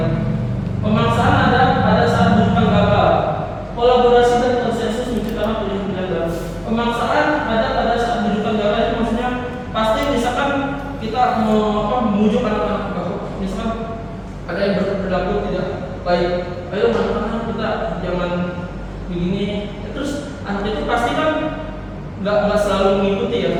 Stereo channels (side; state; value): both; identical; correlation 1.00